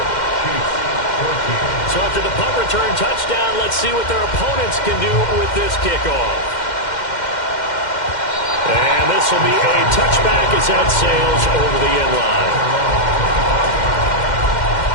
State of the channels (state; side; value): late; right; 2.1 ms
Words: So after the punt return touchdown, let's see what their opponents can do with this kickoff. And this will be a touchback as that sails over the end line.